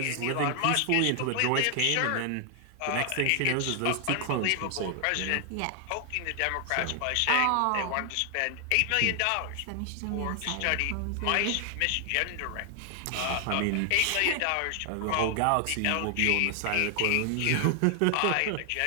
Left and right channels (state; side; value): different; both; correlation 0.00